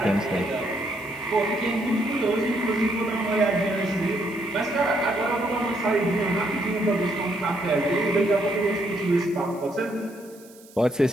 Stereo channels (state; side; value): noise; right; hiss, 24 dB below the sound